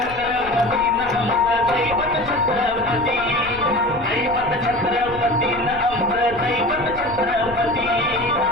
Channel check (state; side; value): noise; left; rumble, 16 dB below the sound